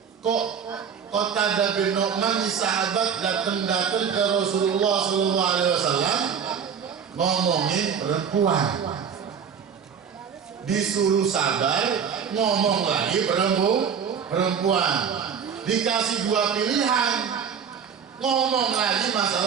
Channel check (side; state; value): left; quieter; 7.2 dB